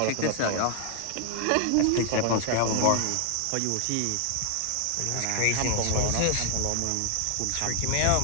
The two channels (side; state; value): both; different; correlation 0.00